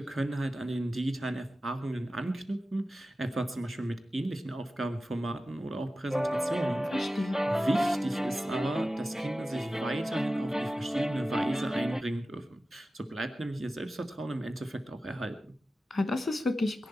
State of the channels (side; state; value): both; normal; correlation 0.94